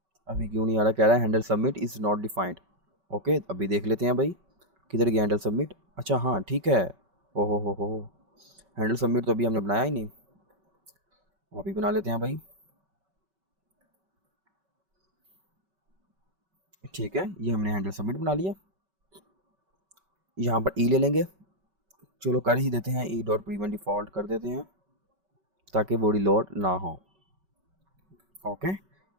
अभी क्यों नहीं आ रहा, कह रहा है handle submit is not defined. Okay, अभी देख लेते हैं भाई किधर गया हैंडल सबमिट। अच्छा हाँ ठीक है, ओहो हो, हैंडल सबमिट तो अभी हमने बनाया ही नहीं, अभी बना लेते हैं भाई। ठीक है, ये हमने हैंडल सबमिट बना लिया। यहाँ पर ई ले लेंगे, चलो कर ही देते हैं, ई डॉट प्रीवेंट डिफ़ॉल्ट कर देते हैं ताकि बॉडी लोड ना हो। Okay,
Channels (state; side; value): late; left; 5.3 ms